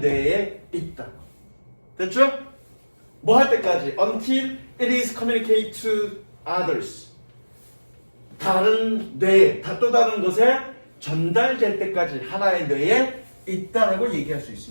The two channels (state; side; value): inverted; both; correlation -1.00